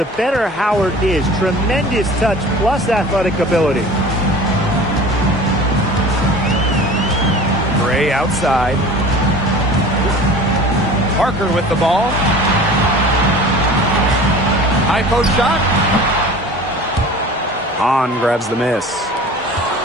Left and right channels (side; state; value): both; normal; correlation 0.41